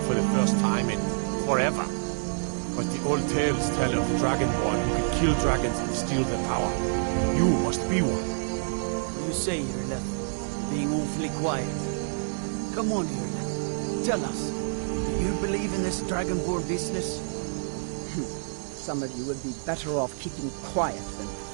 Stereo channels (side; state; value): left; silent; digital silence